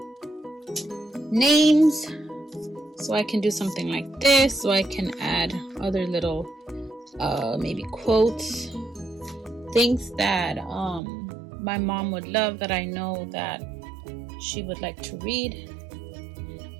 names, so I can do something like this, so I can add other little maybe quotes, things that my mom would love, that I know that she would like to read.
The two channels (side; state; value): left; drops out; at 11.0 s